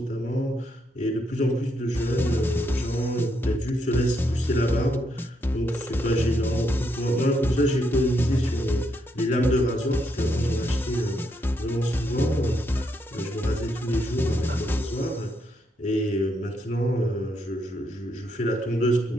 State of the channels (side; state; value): both; normal; correlation 0.77